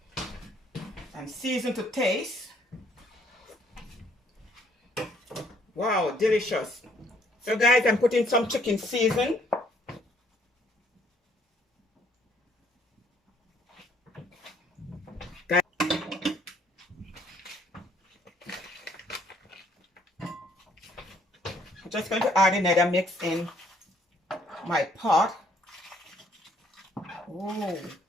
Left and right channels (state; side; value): normal; both; correlation 0.64